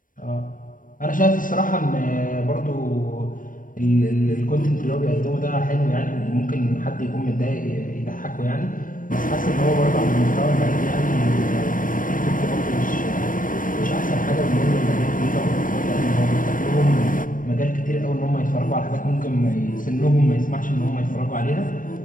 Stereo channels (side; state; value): right; late; 0.39 ms